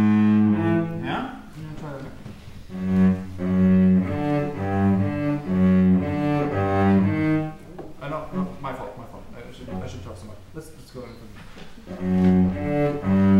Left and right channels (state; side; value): identical; both; correlation 1.00